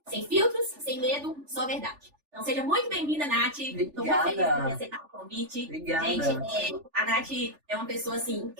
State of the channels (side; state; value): left; late; 3.4 ms